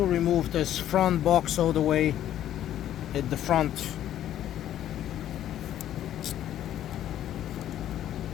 remove this front box all the way at the front.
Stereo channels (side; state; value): right; quieter; 11.6 dB